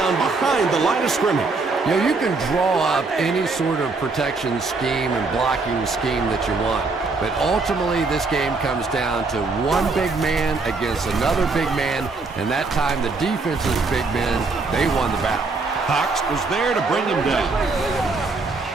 behind the line of scrimmage. You know, you can draw up any sort of protection scheme and blocking scheme that you want. But ultimately, this game comes down to one big man against another big man. And that time, the defense's big men, they won the battle. Cox was there to bring him down.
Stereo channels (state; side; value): quieter; left; 3.9 dB